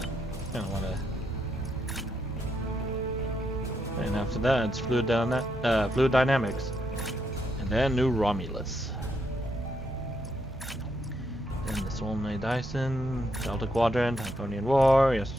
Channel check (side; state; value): both; normal; correlation 0.79